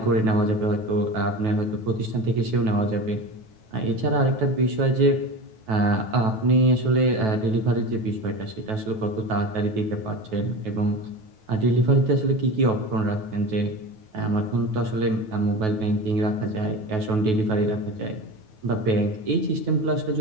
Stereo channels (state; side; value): late; left; 9.2 ms